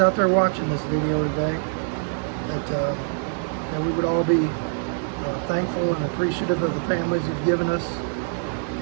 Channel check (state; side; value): silent; left; digital silence